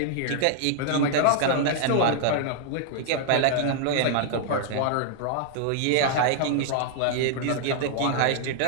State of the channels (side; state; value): both; different; correlation -0.01